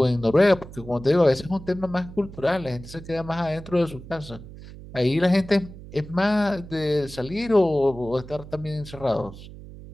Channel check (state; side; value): noise; right; hum, 15 dB below the sound